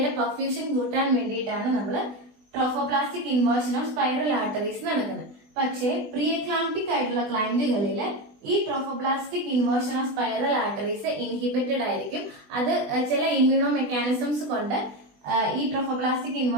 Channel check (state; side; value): late; left; 20 ms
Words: പെർഫ്യൂഷൻ കൂട്ടാൻ വേണ്ടിയിട്ടാണ് നമ്മൾ trophoblastic inversion of spiral arteries നടക്കുന്നത്. പക്ഷേ പ്രീ എക്ലാംപ്റ്റിക് ആയിട്ടുള്ള ക്ലയന്റുകളില് ഈ trophoblastic inversion of spiral arteries inhibited ആയിരിക്കും. അത് ചില ഇമ്മ്യൂണോ മെക്കാനിസംസ് കൊണ്ട് ഈ trophoblastic